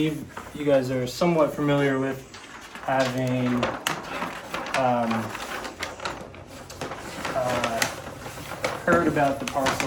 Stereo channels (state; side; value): identical; both; correlation 1.00